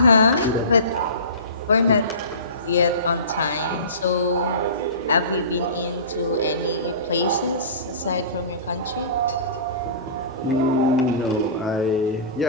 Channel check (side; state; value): both; inverted; correlation -0.34